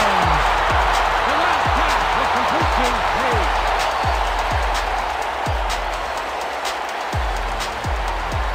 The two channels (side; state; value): both; identical; correlation 1.00